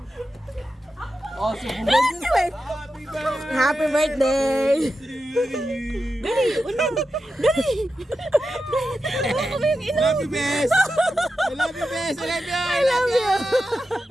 Oh, subukan. Happy birthday! Happy birthday! Dali, unang! Dali! Hawakan mo yung ino! Love you, best! I love you, best! I love you! I love you!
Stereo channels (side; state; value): both; normal; correlation 0.90